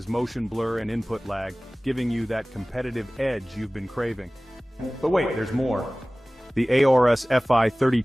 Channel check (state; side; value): normal; both; correlation 0.98